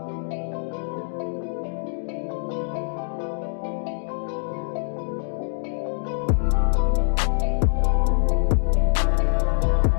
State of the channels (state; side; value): silent; right; digital silence